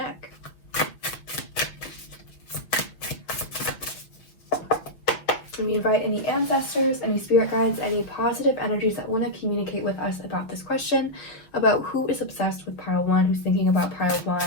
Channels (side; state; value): right; late; 6.1 ms